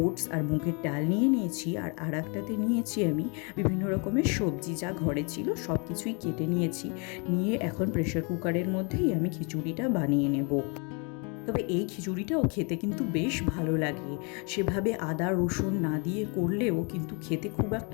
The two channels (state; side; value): quieter; right; 34.1 dB